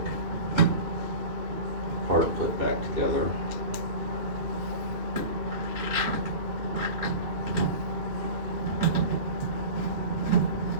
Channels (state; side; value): late; left; 2.6 ms